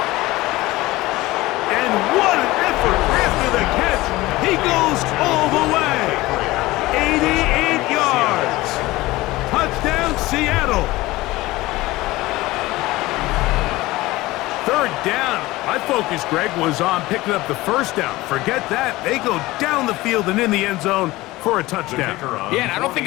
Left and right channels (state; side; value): quieter; right; 19.1 dB